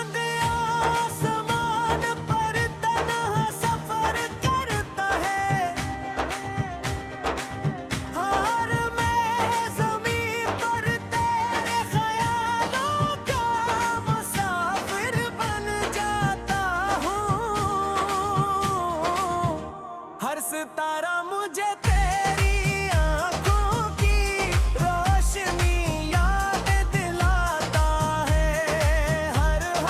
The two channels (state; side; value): identical; both; correlation 1.00